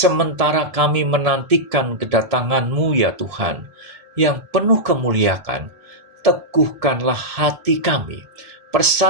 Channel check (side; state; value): left; late; 1.7 ms